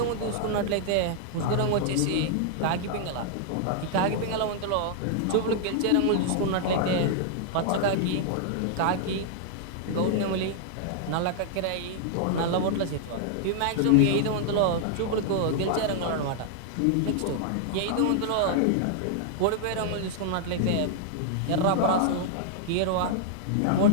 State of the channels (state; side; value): different; both; correlation -0.01